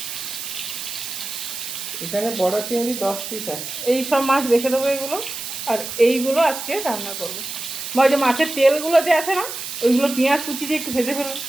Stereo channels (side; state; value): right; noise; hiss, 7 dB below the sound